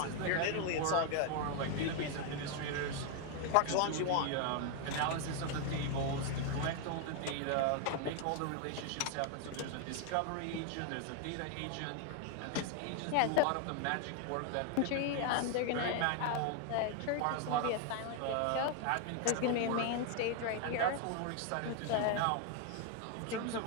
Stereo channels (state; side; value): different; both; correlation 0.00